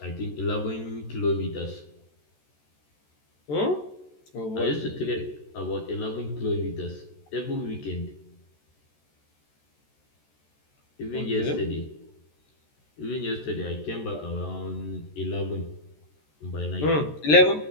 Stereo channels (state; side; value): late; right; 14 ms